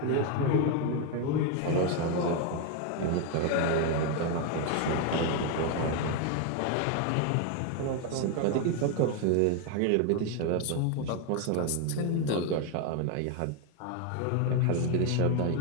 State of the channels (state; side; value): different; both; correlation 0.01